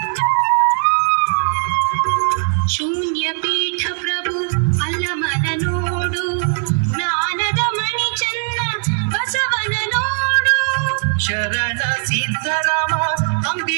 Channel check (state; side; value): silent; left; 63 dB below the other